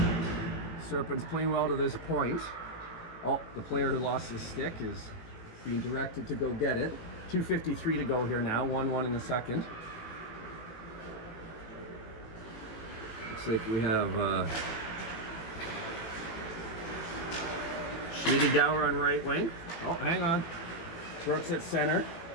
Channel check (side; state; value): right; late; 18 ms